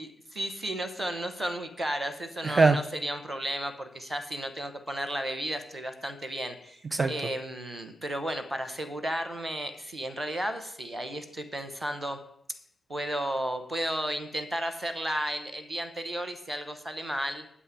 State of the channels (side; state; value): both; normal; correlation 0.90